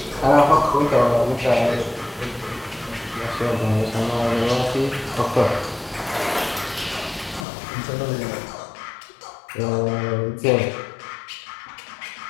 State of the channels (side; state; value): right; drops out; at 7.5 s